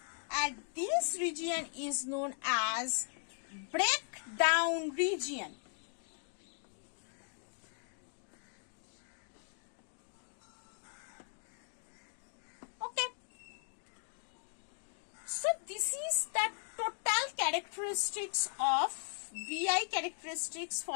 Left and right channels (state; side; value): silent; right; 52 dB below the other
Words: and this region is known as breakdown region. So this is the total characteristics of VI characteristics